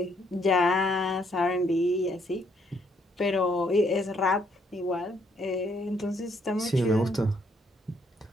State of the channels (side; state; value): both; normal; correlation 0.70